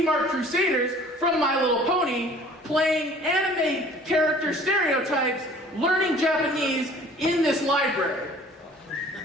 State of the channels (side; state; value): both; normal; correlation 0.50